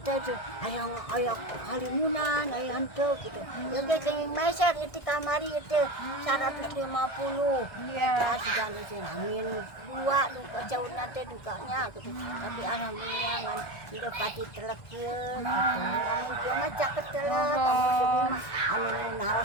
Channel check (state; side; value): late; right; 1.6 ms